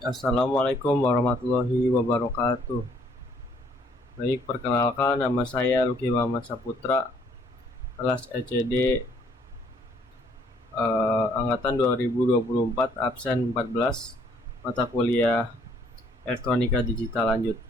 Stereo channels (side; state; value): both; normal; correlation 0.64